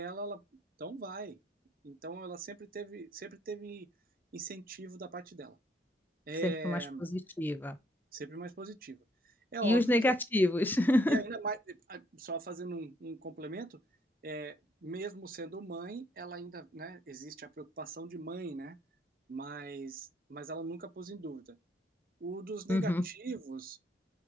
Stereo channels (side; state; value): both; normal; correlation 0.69